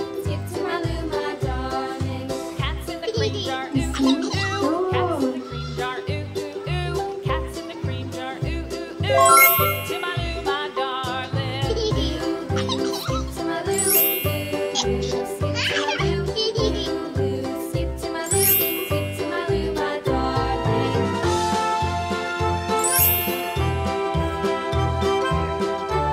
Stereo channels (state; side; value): identical; both; correlation 1.00